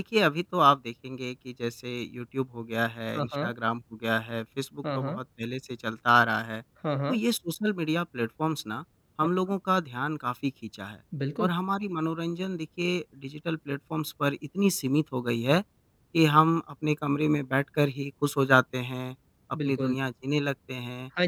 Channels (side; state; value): both; identical; correlation 1.00